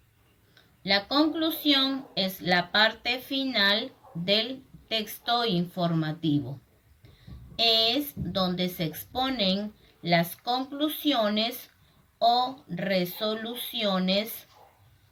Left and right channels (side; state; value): both; identical; correlation 1.00